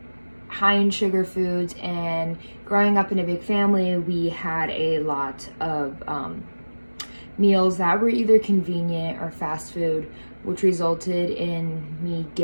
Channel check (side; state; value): both; inverted; correlation -1.00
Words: high in sugar foods, and growing up in a big family, we had a lot of meals that were either convenient or fast food, which resulted in me